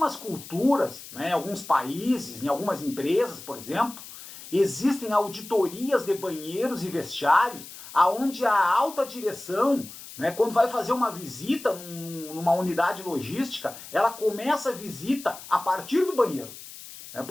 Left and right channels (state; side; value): noise; left; hiss, 15 dB below the sound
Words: culturas, né, em alguns países, em algumas empresas, por exemplo, existem auditorias de banheiros e vestiários onde a alta direção, né, quando vai fazer uma visita numa unidade logística, ela começa a visita a partir do banheiro. Né,